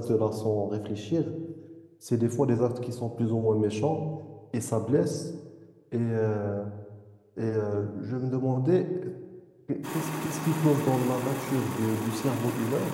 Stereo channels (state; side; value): identical; both; correlation 1.00